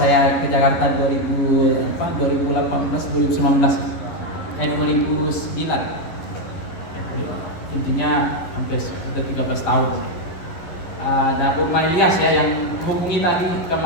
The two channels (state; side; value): late; right; 11 ms